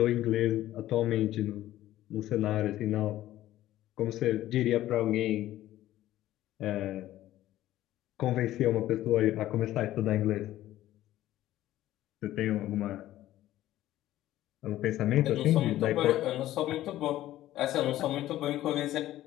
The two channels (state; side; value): quieter; right; 14.2 dB